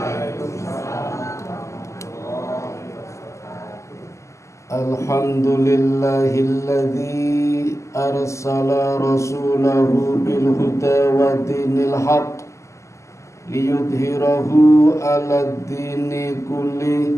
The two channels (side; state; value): right; late; 0.14 ms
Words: Alhamdulillahilladzi arsala rasulahu bil huda wa dinil haqq liyudhhirahu 'alad dini